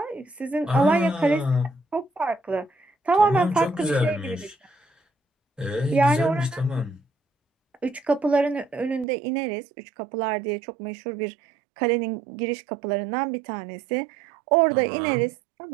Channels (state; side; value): drops out; left; at 9.1 s